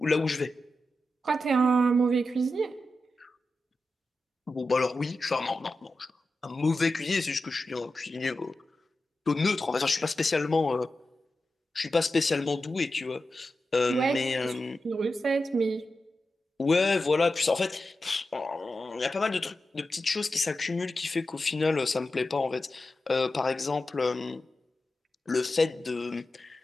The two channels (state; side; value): normal; both; correlation 0.91